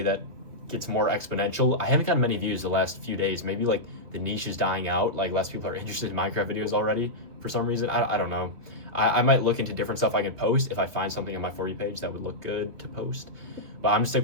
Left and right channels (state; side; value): late; left; 2.9 ms